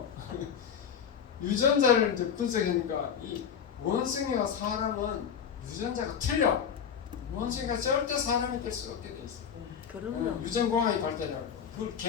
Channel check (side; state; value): right; quieter; 7.6 dB